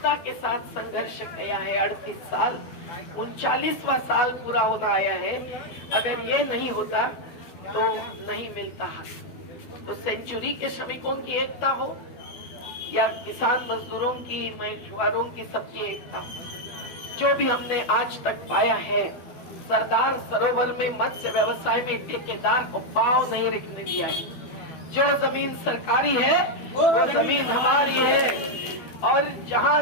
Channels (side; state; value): right; late; 12 ms